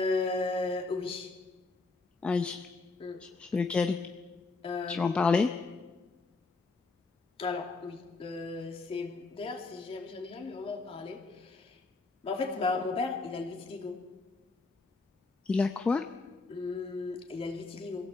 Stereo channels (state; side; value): quieter; right; 3.8 dB